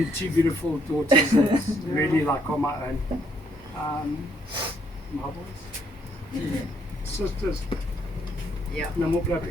2 beautiful daughters that's really like on my own. My boys. Sisters. Yeah. No more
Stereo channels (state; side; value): normal; both; correlation 0.70